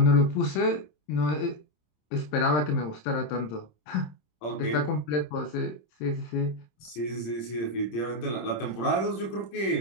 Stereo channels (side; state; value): right; late; 26 ms